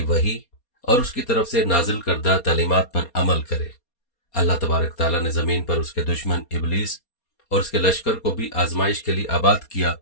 وحی اور اس کی طرف سے نازل کردہ تعلیمات پر عمل کرے۔ اللہ تبارک تعالیٰ نے زمین پر اس کے دشمن ابلیس اور اس کے لشکر کو بھی آزمائش کے لیے آباد کیا۔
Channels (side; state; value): right; late; 4.2 ms